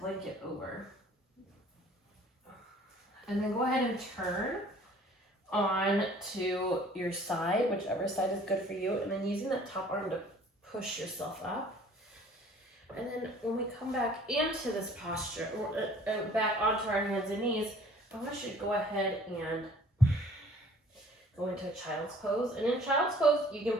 over. And then go ahead and turn on to your side, whichever side is good for you, and then using that top arm to push yourself up. And then when we come back into this posture, back onto our hands and knees, I want you to go ahead and go into a child's pose. And in child's pose, you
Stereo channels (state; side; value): normal; both; correlation 0.53